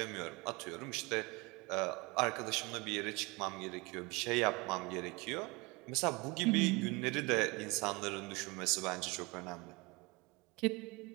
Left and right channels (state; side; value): quieter; left; 25.7 dB